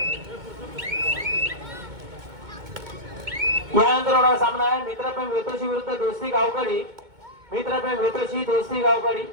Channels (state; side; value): late; left; 2.2 ms